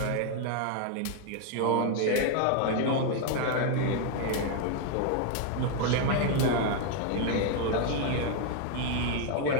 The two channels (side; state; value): both; different; correlation 0.00